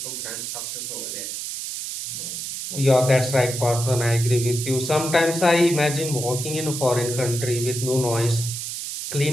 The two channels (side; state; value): right; noise; hiss, 6 dB below the sound